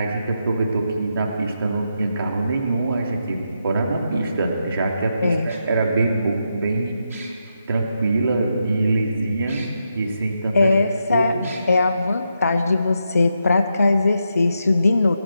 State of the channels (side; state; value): both; inverted; correlation -0.83